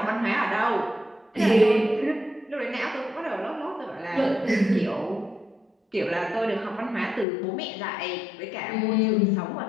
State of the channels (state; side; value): drops out; right; at 7.2 s